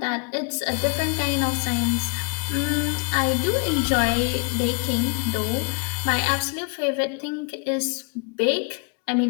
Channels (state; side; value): quieter; right; 35.0 dB